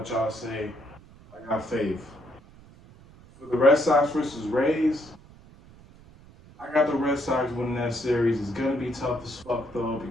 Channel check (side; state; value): right; noise; rumble, 23 dB below the sound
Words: y'all say. I got faith. For the Red Sox versus Rays, I got the Red Sox winning that series. It's gonna be tough as fuck though